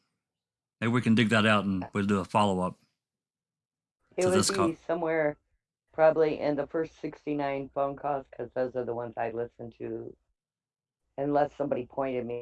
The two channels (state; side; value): identical; both; correlation 1.00